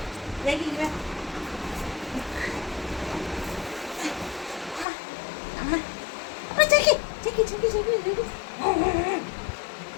ஜாக்கி அம்மா அம்மா ஜாக்கி ஜாக்கி ஜாக்கி ஜாக்கி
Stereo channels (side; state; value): right; drops out; at 4.9 s